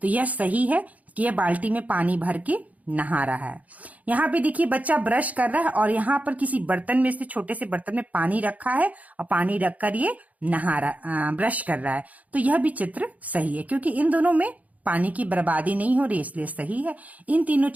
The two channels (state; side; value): late; left; 0.073 ms